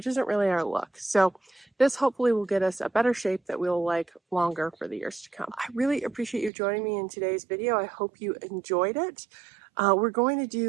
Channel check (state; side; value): drops out; left; at 6.5 s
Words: isn't really our look. So this hopefully will get us a better shape that we'll like longer for the years to come. I really appreciate you joining me in today's video. I hope you enjoyed it. We're going to